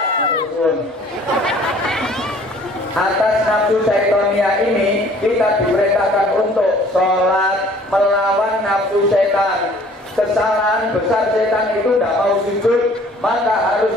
Atas nafsu syaitonia ini kita diperintahkan untuk sholat melawan nafsu setan. Kesalahan besar setan itu tidak mau sujud, maka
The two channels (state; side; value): normal; both; correlation 0.54